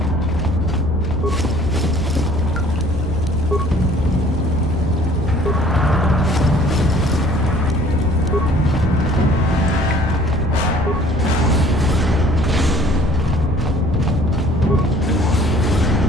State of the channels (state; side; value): normal; both; correlation 0.54